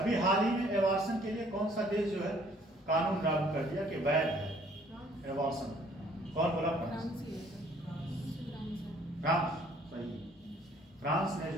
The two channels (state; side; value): normal; both; correlation 0.60